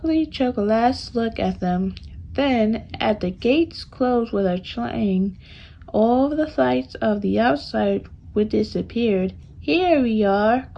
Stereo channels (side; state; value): both; identical; correlation 1.00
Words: last look at them. Then, as the gates closed with a clang, all the lights of the outside would disappeared. Here we are,